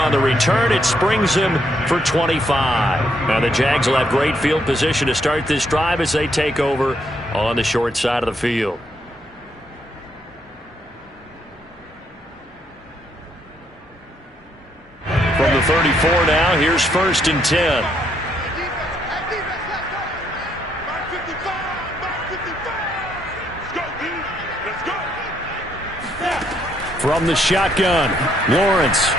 the return. It springs him for 25. Now the Jags will have great field position to start this drive as they take over on the short side of the field. From the 34 now, here's 1st and 10. From the shotgun, Lawrence.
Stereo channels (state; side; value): normal; both; correlation 0.73